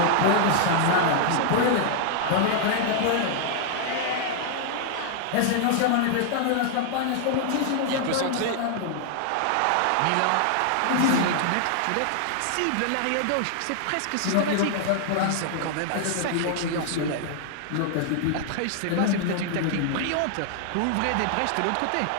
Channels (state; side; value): different; both; correlation 0.00